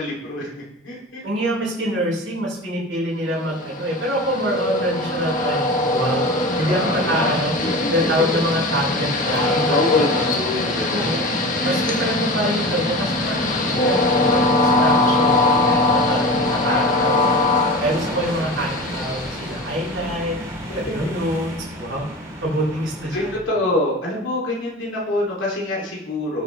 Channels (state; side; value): normal; both; correlation 0.32